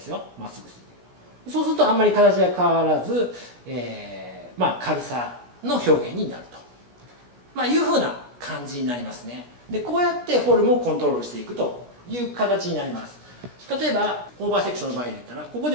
すよ。まっすぐすいていく。そうするとあんまり形が変わらず、軽さの表現になると、いうふうな感じになりますね。で、こうやってフォルムをコントロールしていくという形になります。例えばオーバーセクションの場合で言ったら、ここで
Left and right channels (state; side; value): late; left; 17 ms